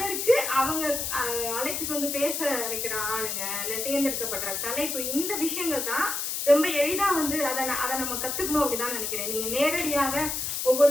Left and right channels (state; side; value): noise; left; hiss, 2 dB below the sound